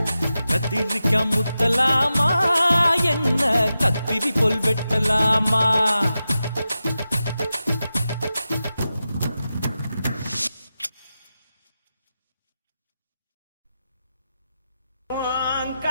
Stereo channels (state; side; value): inverted; both; correlation -0.91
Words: கத்திரிக்க முத்தலாமா என்ன கத்திரி போல் வெட்டலாமா